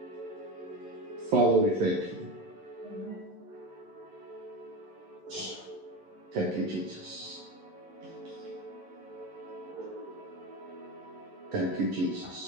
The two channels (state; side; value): late; left; 11 ms